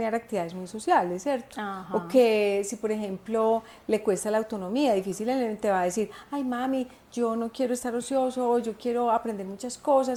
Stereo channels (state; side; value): identical; both; correlation 1.00